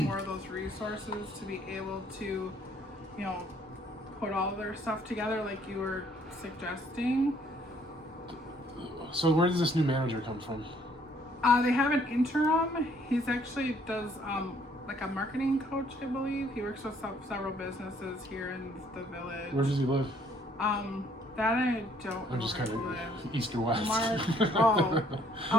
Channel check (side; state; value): both; normal; correlation 0.63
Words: of those resources to be able to, you know, put all their stuff together like you were suggesting. So where does this new manager come from? They have an interim. He's actually does like a marketing coach, I believe. He works with several businesses here in the village. Where does he live? That I don't I'm know just where kind he of lives. east or west. Mark, oh,